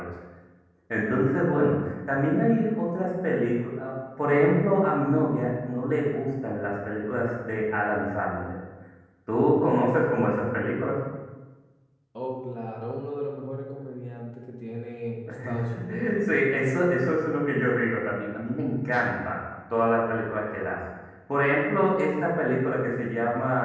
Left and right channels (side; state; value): both; identical; correlation 1.00